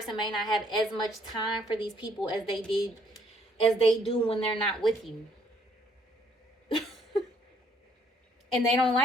may not have as much time for these people as they do when they're not with you. And they don't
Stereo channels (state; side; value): normal; both; correlation 0.66